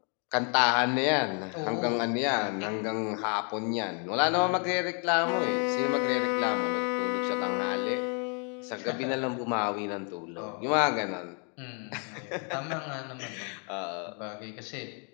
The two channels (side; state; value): right; quieter; 39.1 dB